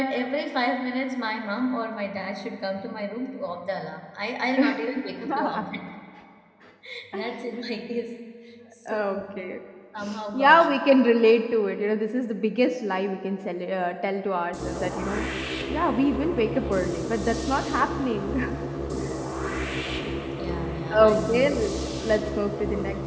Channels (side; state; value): both; identical; correlation 1.00